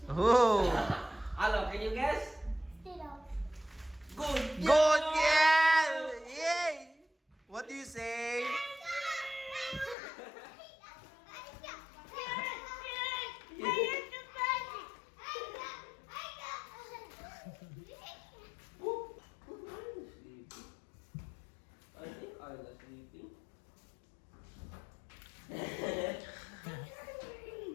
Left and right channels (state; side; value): drops out; right; at 10.0 s